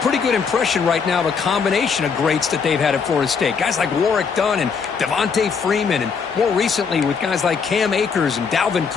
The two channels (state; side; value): quieter; right; 5.8 dB